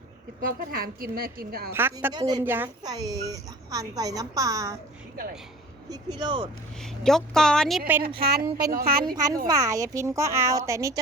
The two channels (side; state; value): both; normal; correlation 0.43